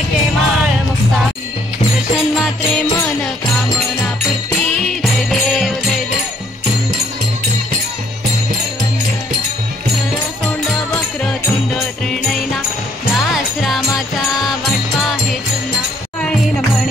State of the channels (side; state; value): both; normal; correlation 0.66